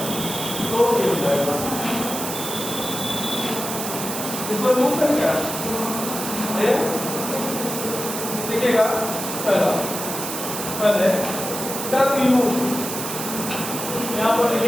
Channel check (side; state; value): right; noise; hiss, 5 dB below the sound